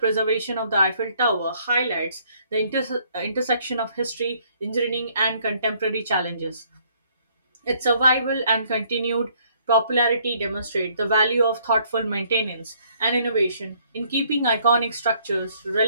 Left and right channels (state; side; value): inverted; both; correlation -0.65